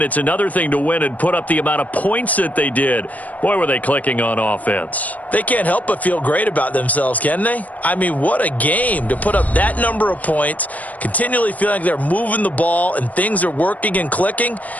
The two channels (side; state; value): right; late; 0.073 ms